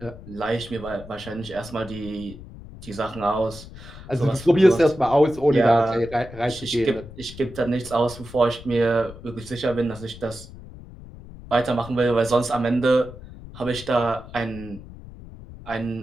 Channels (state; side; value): noise; left; rumble, 16 dB below the sound